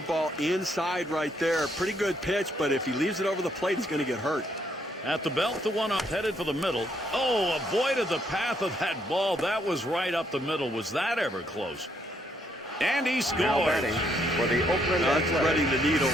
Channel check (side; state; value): both; normal; correlation 0.72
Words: inside right there. Pretty good pitch, but if he leaves it over the plate, he's going to get hurt. At the belt, the one up headed for the middle. Oh, avoided the path of that ball. That was right up the middle. Was that ever close? And he Now scores. batting for the Oakland That's Athletics. threading the needle